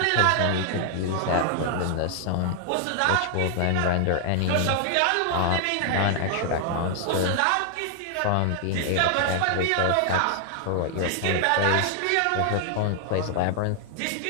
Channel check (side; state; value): both; different; correlation 0.00